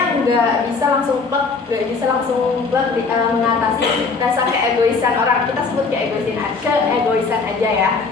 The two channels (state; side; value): quieter; right; 4.5 dB